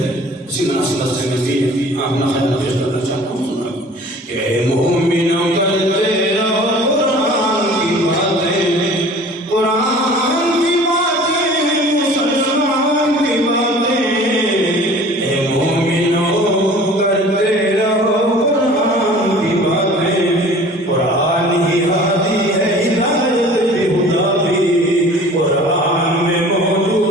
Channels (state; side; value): normal; both; correlation 0.46